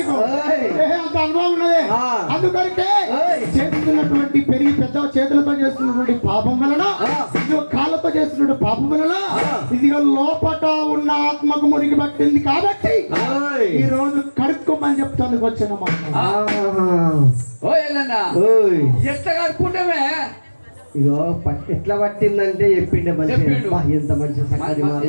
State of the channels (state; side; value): inverted; both; correlation -1.00